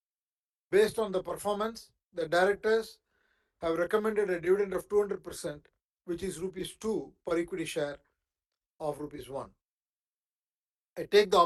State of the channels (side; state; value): both; identical; correlation 1.00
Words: Based on the performance, the directors have recommended a dividend of 200%, which is rupees 2 per equity share of rupees 1. I take the